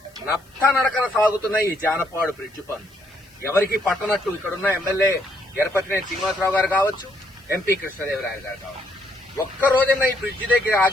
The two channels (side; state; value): left; noise; hiss, 30 dB below the sound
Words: నత్తనడకన సాగుతున్న ఈ జానపాడు బ్రిడ్జి పనులు ఎవరికి పట్టనట్టు ఇక్కడున్న ఎమ్మెల్యే ఎరపతినేని శ్రీనివాసరావు గారు కావచ్చు, ఎంపీ కృష్ణదేవరాయలు గారు కావచ్చు, ఒక్క రోజైనా ఈ బ్రిడ్జి దగ్గర